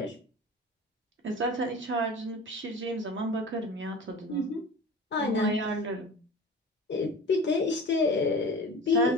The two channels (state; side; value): normal; both; correlation 0.36